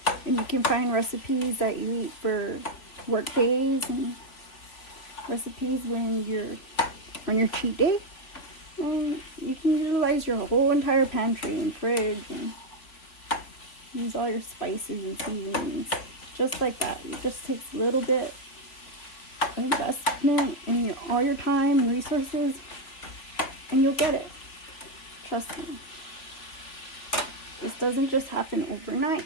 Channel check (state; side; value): late; right; 3.6 ms